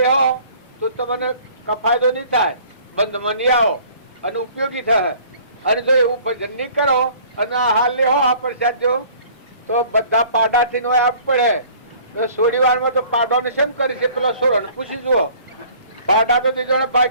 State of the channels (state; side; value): inverted; both; correlation -0.52